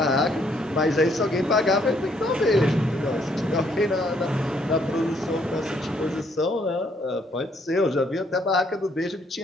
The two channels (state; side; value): normal; both; correlation 0.68